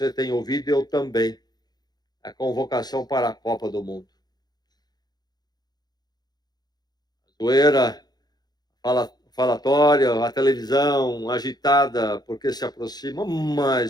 tem ouvido, eu também. A convocação para a Copa do Mundo. A zoeira, falatória, a televisão agitada, porque se aproxima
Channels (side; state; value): right; late; 0.19 ms